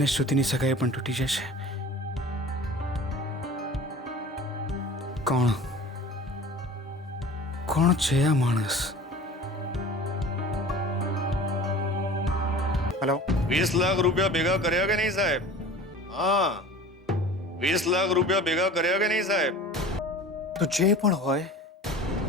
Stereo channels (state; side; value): normal; both; correlation 0.41